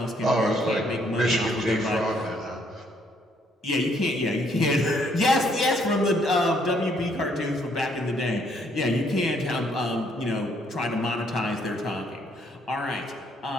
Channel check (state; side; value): normal; both; correlation 0.68